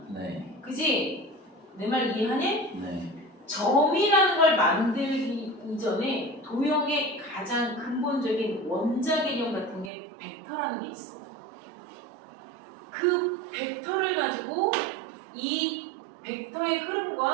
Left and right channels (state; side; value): drops out; left; at 9.9 s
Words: 네. 그지? 내 말 이해하니? 네. 점이라는 걸 만들기 이전에 도형의 가장 근본적인 원자 개념 같은 게 벡터라는 게 있어. 그 벡터를 가지고 이 벡터의